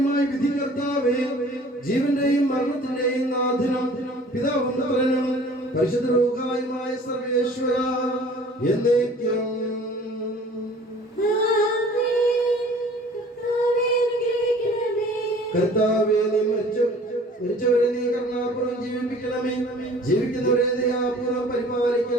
വിധി കർത്താവേ, ജീവന്റെയും മരണത്തിന്റെയും നാഥനും പിതാവും പുത്രനും പരിശുദ്ധ റൂഹായുമായ സർവേശ്വര എന്നേക്കും കർത്താവേ, നീ മരിച്ചവരെ നീ കരുണാപൂർവ്വം ജീവിപ്പിക്കണമേ. ജീവിക്കുന്നവരെ ദയാപൂർവ്വം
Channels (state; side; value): normal; both; correlation 0.49